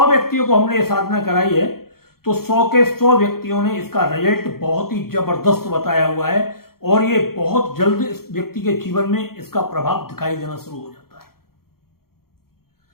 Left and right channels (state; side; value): late; right; 0.94 ms